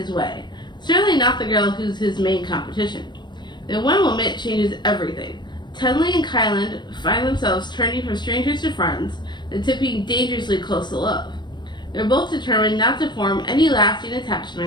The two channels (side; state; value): right; late; 0.22 ms